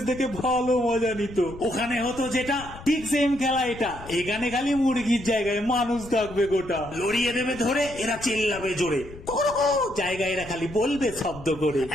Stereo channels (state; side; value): noise; left; rumble, 16 dB below the sound